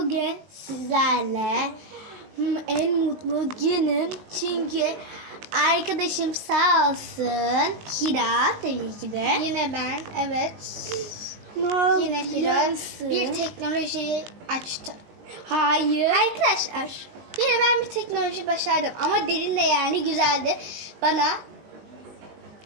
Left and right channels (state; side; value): late; left; 19 ms